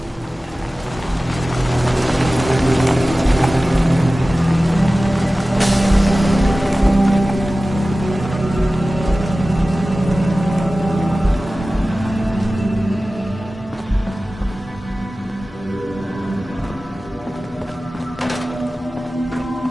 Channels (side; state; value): both; normal; correlation 0.96